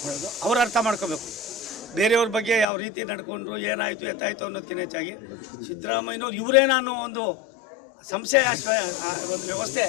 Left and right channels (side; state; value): right; drops out; at 2.7 s